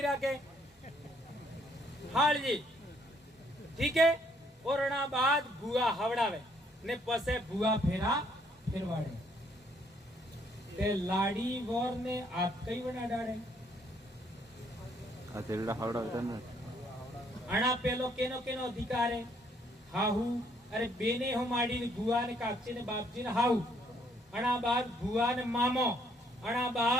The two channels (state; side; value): normal; both; correlation 0.68